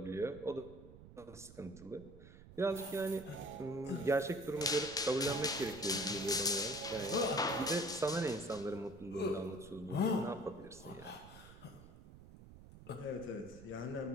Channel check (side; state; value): right; noise; rumble, 18 dB below the sound